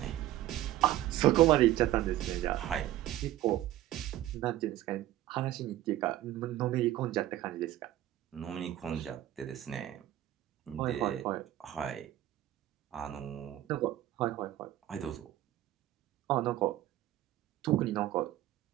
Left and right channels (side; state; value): left; quieter; 14.0 dB